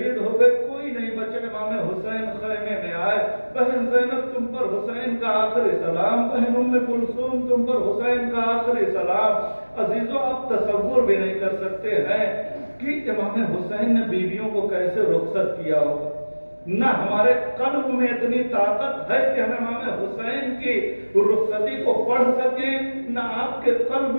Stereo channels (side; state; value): both; inverted; correlation -1.00